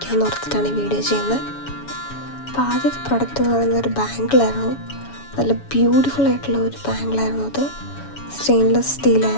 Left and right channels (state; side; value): late; right; 7.1 ms